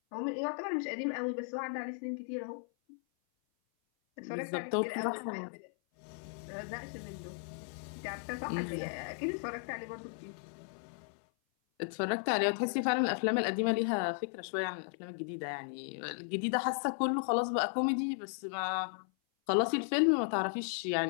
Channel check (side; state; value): right; silent; 54 dB below the other